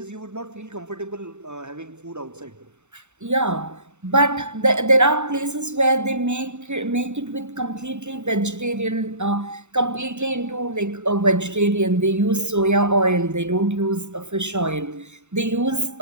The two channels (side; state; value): left; late; 0.83 ms